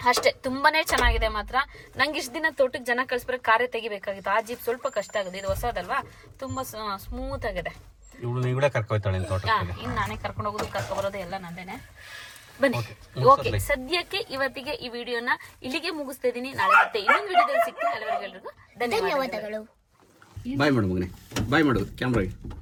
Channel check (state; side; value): identical; both; correlation 1.00